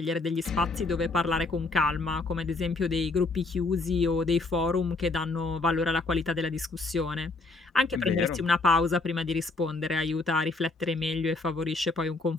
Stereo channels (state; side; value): quieter; right; 3.4 dB